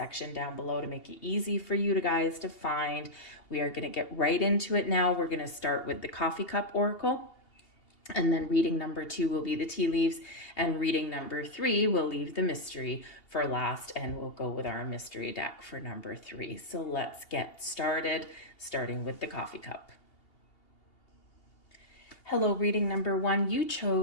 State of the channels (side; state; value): right; late; 2.8 ms